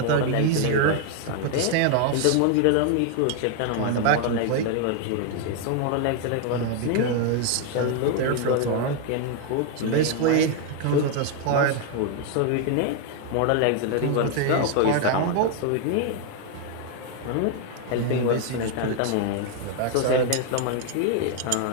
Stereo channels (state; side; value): different; both; correlation 0.00